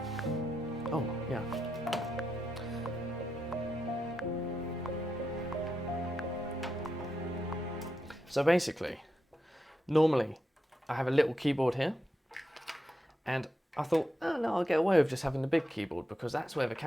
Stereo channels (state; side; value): normal; both; correlation 0.86